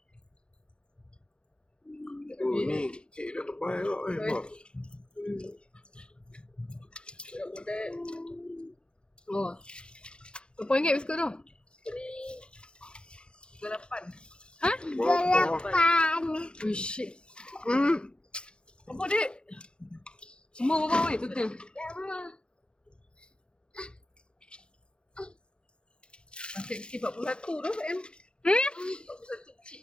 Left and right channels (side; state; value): right; late; 0.053 ms